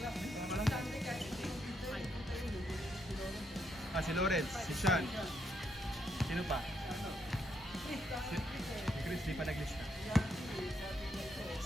Ah, si Lawrence, si Sean. Sino pa? Si Chris, di pa naglista.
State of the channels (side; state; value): both; normal; correlation 0.77